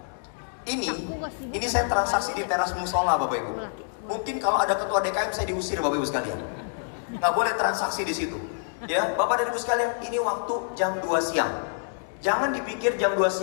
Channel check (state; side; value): silent; right; digital silence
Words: Ini saya transaksi di teras musola Bapak Ibu. Mungkin kalau ada ketua DKM saya diusir Bapak Ibu sekalian. Nggak boleh transaksi di situ. Ya, Bapak dan Ibu sekalian, ini waktu jam 2 siang. Jangan dipikir jam 2